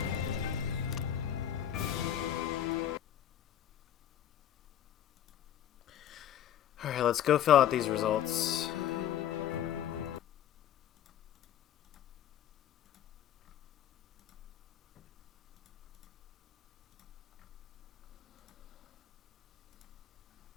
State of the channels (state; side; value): quieter; right; 10.5 dB